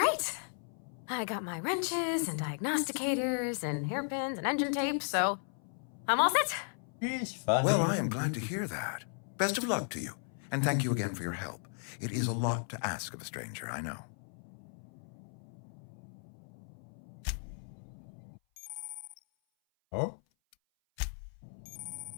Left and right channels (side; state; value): right; silent; 54 dB below the other